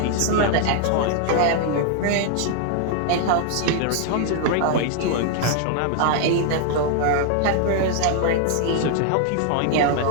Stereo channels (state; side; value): different; both; correlation 0.00